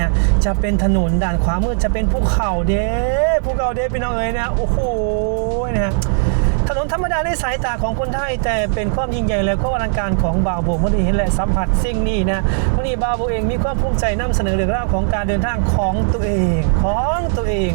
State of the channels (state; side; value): silent; left; digital silence